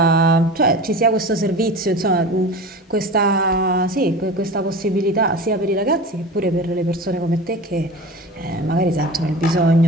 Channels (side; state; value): both; normal; correlation 0.34